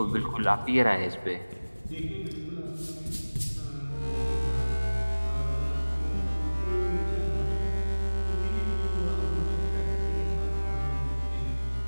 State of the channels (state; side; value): inverted; both; correlation -1.00